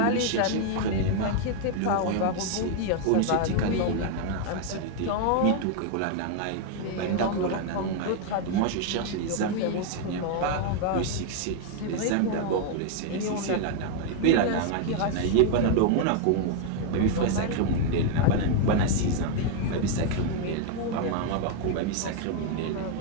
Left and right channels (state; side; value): different; both; correlation 0.00